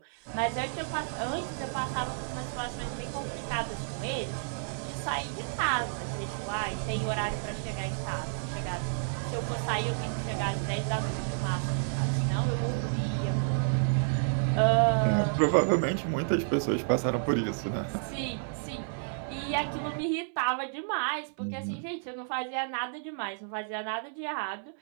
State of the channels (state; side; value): silent; left; 57 dB below the other